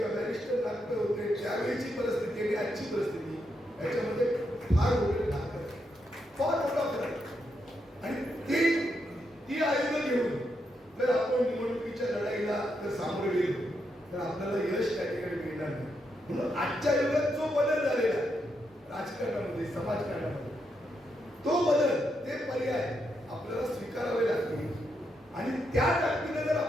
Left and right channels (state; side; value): normal; both; correlation 0.81